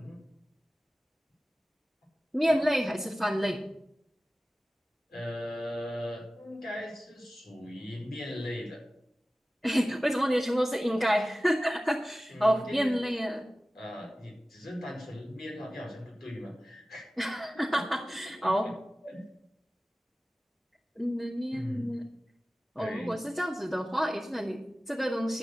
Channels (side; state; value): both; normal; correlation 0.96